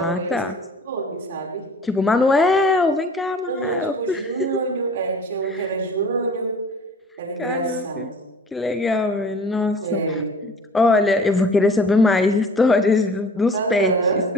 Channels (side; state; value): both; normal; correlation 0.47